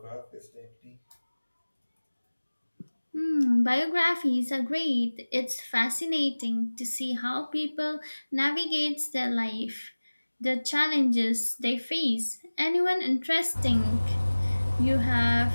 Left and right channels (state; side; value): inverted; both; correlation -1.00